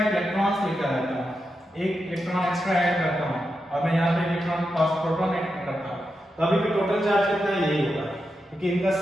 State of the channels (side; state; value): both; normal; correlation 0.87